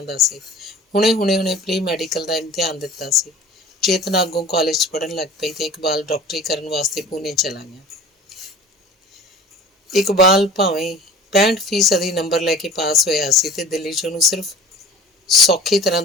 ਦਾ ਸੀ। ਹੁਣੇ ਪ੍ਰੀ ਮੈਡੀਕਲ ਦਾ ਇਮਤਿਹਾਨ ਦਿੱਤਾ ਸੀ। ਚੇਤਨਾ ਅੱਗੋਂ ਕਾਲਜ 'ਚ ਪੜ੍ਹਨ ਲੱਗ ਪਈ ਤੇ ਇਕਬਾਲ ਡਾਕਟਰੀ ਕਰਨ ਵਾਸਤੇ ਪੂਨੇ ਚਲਾ ਗਿਆ। ਇਕਬਾਲ ਭਾਵੇਂ 65% ਨੰਬਰ ਲੈ ਕੇ ਪਾਸ ਹੋਇਆ ਸੀ ਤੇ ਦਿੱਲੀ 'ਚ ਉਹਨੂੰ ਸਿਰਫ ਸੌਖੀ ਤਰ੍ਹਾਂ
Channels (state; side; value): normal; both; correlation 0.42